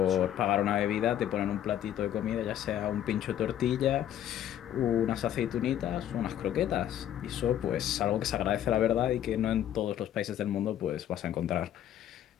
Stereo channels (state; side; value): quieter; right; 11.1 dB